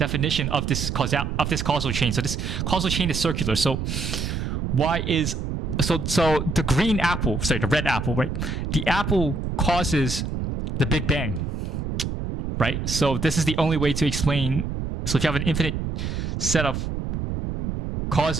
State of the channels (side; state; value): right; noise; rumble, 3 dB below the sound